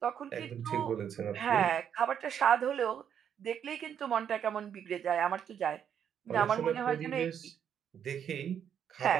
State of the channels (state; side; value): quieter; left; 8.6 dB